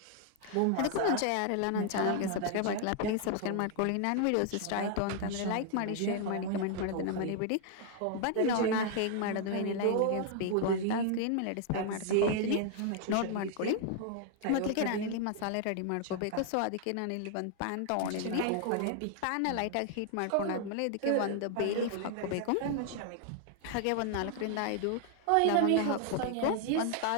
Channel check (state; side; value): different; both; correlation 0.00